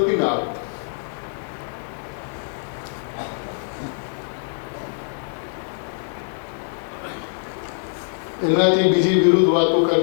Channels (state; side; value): silent; right; digital silence